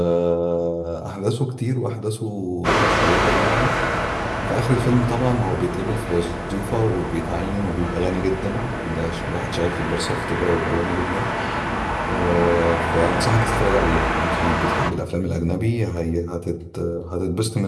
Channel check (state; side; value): identical; both; correlation 1.00